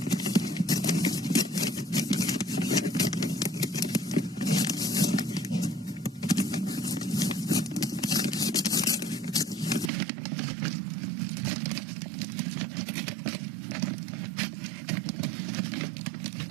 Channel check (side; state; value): left; drops out; at 9.9 s